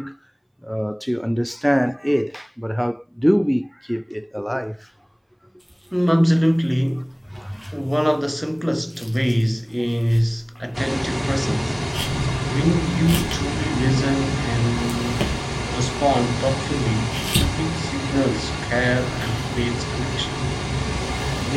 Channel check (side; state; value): both; identical; correlation 1.00